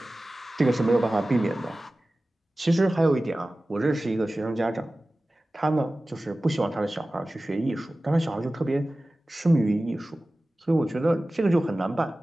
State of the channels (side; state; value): both; normal; correlation 0.96